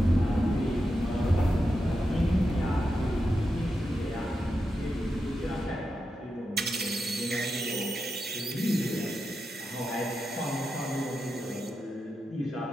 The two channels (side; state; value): both; normal; correlation 0.88